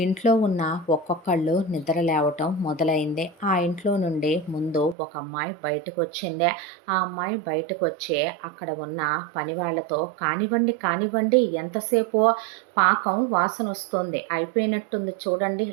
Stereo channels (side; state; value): left; drops out; at 5.0 s